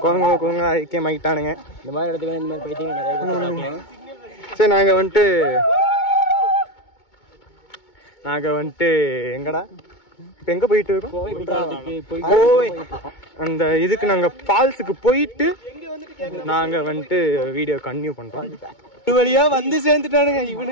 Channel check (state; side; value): late; right; 2.2 ms